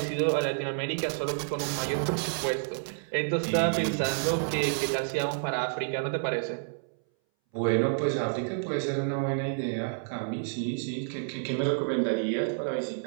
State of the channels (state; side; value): silent; left; 58 dB below the other